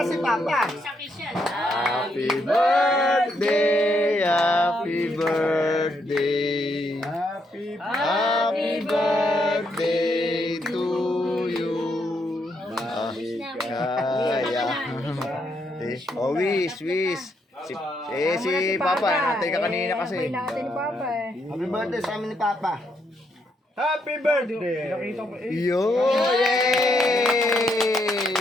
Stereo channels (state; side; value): normal; both; correlation 0.77